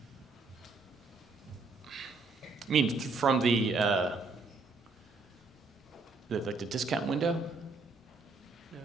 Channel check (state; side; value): quieter; left; 4.0 dB